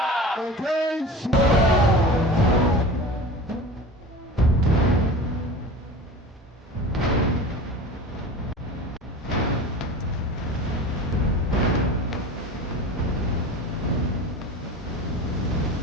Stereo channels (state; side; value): normal; both; correlation 0.35